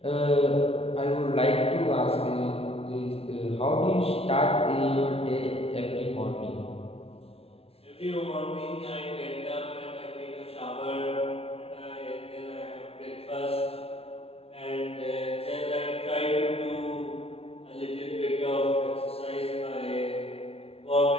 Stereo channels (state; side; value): late; right; 0.29 ms